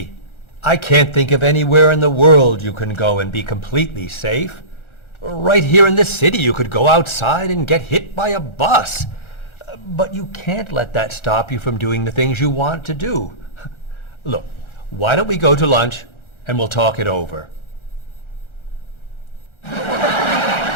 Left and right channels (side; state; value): right; late; 1.4 ms